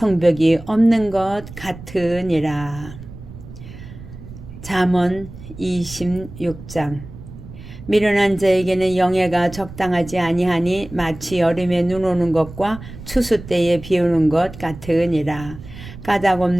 없는 것 같으니라. 잠언 26장. 미련한 자에게는 영예가 적당하지 아니하니 마치 여름에 눈 오는 것과 추수 때에 비 오는 것 같으니라. 까닭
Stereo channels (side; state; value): right; noise; rumble, 15 dB below the sound